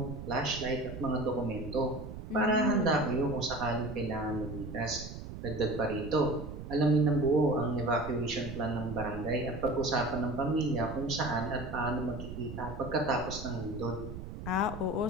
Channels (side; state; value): right; noise; rumble, 9 dB below the sound